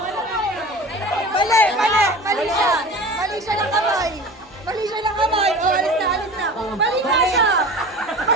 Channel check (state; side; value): normal; both; correlation 0.37